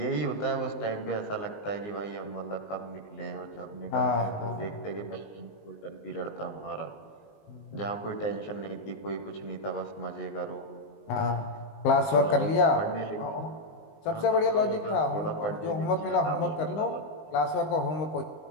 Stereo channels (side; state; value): right; late; 19 ms